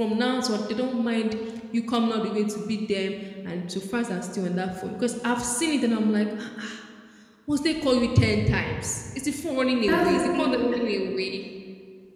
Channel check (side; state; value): both; identical; correlation 1.00